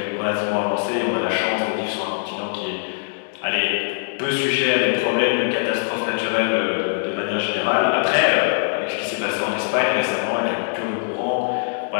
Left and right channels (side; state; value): right; silent; digital silence